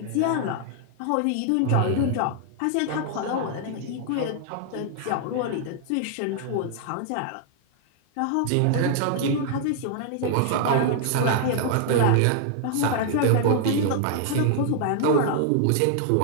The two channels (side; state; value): both; different; correlation -0.01